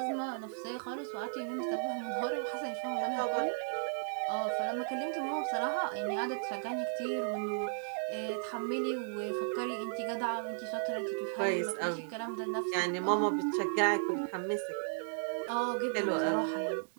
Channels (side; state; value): left; silent; digital silence